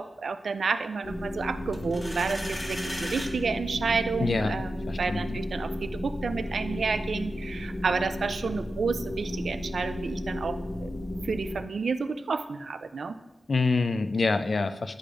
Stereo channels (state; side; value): normal; both; correlation 0.90